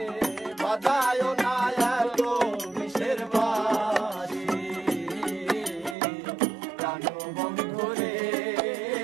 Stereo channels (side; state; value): left; drops out; at 6.0 s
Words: বাজায় না এত বিষের বাঁশি, প্রাণ বন্ধু রে